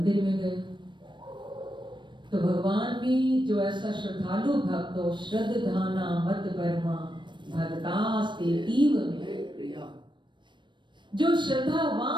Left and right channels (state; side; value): late; left; 0.22 ms